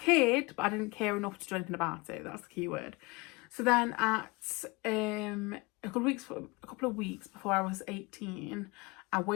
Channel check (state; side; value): quieter; right; 25.5 dB